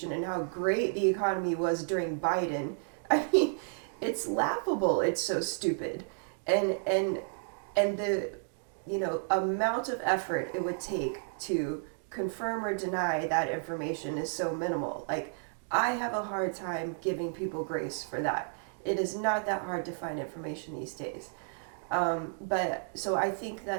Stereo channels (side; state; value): left; silent; digital silence